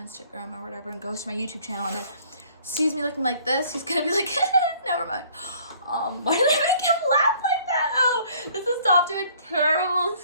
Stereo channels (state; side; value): inverted; both; correlation -0.57